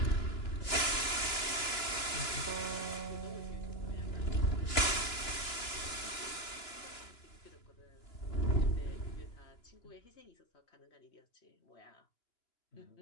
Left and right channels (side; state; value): right; late; 2.9 ms